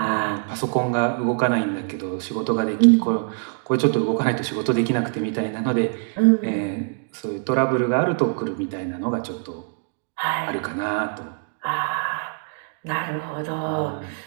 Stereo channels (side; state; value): left; silent; 57 dB below the other